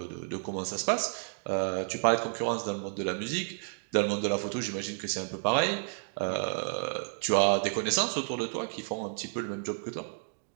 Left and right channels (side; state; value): left; silent; digital silence